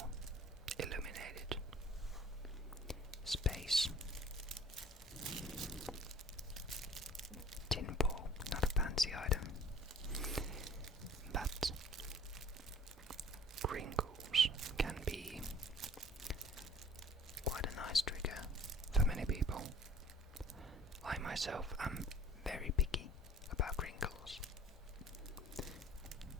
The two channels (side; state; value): both; normal; correlation 0.50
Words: illuminated space. Tin foil, not a fancy item, but crinkles can be quite a nice trigger for many people. I myself am very picky about crinkles.